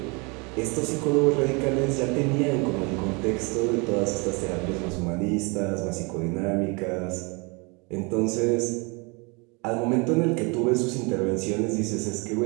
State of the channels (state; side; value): quieter; left; 29.8 dB